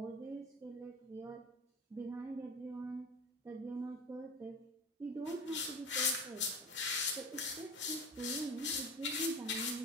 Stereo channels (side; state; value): both; normal; correlation 0.31